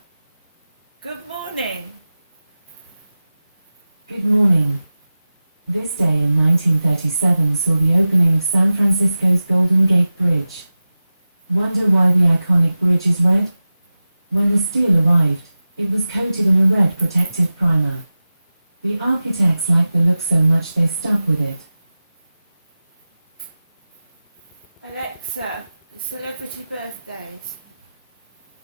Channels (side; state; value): both; inverted; correlation -0.96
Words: good morning. Good morning. This day in 1937 saw the opening of San Francisco's Golden Gate Bridge. Wonder why the iconic bridge is red? When the steel arrived, it was coated in a red protective primer. The architects liked the look so much they stuck with it. Alexa, celebrity birthdays.